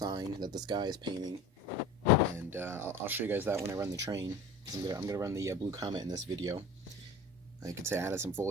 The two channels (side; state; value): both; normal; correlation 0.38